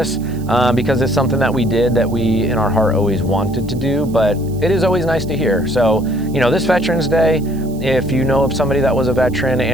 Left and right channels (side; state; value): right; noise; hiss, 24 dB below the sound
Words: because it's something that we did that we, in our heart, always wanted to do, but it is always nice to hear. So, this Veterans Day, if you know of somebody that was a veteran,